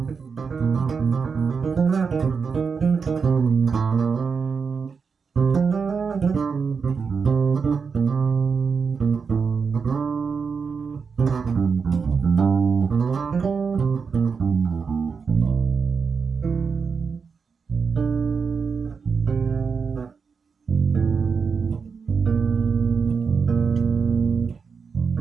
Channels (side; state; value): left; quieter; 5.6 dB